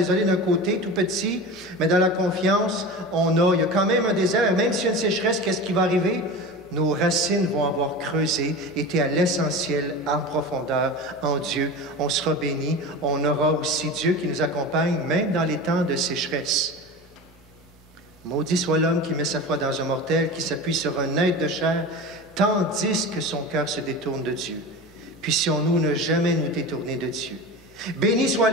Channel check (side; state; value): both; normal; correlation 0.30